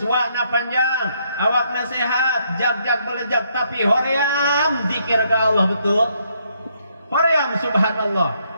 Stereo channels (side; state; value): both; inverted; correlation -0.73